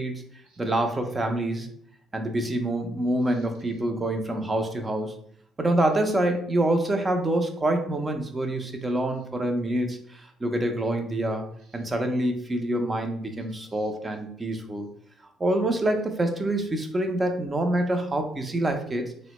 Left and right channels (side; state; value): both; normal; correlation 0.78